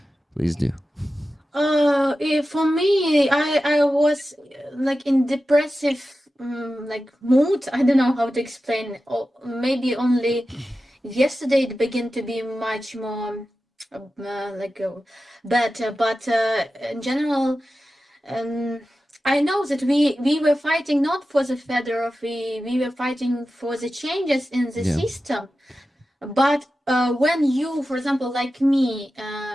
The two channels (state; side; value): normal; both; correlation 0.93